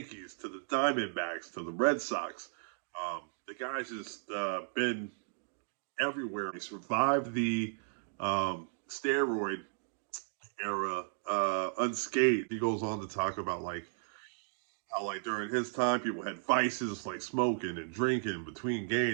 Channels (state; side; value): silent; left; digital silence